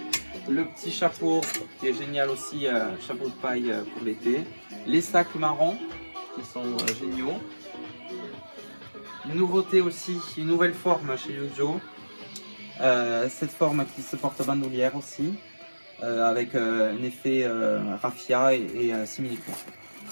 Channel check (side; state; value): both; inverted; correlation -1.00